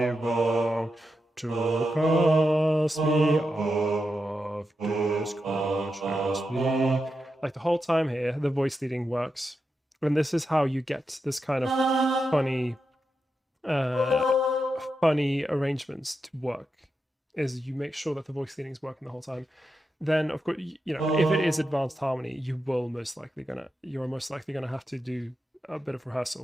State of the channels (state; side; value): normal; both; correlation 0.87